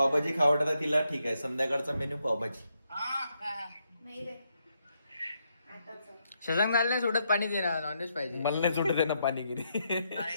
खावडता तिला. ठीक आहे संध्याकाळचा मेन्यू पावभाजी. नाही रे. शशांक नाही सोडत पाणी देणार. नॉनव्हेज पाहिजे. मला नाही सुटत आहे ना पाणीगिरी.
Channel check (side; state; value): both; inverted; correlation -0.79